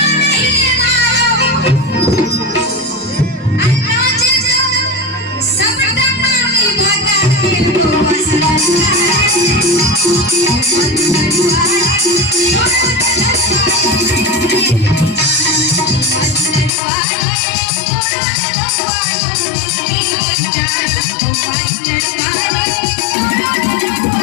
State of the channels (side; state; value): right; drops out; at 16.7 s